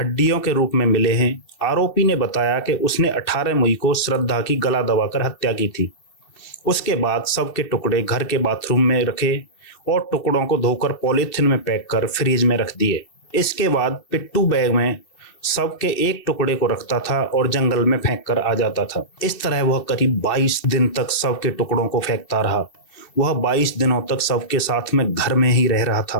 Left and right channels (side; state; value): right; late; 2.7 ms